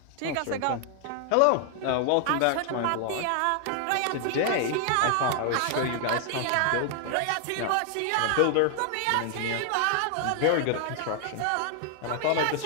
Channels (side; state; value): both; different; correlation 0.00